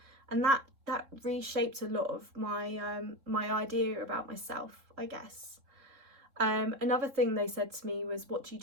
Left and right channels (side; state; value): left; late; 3.7 ms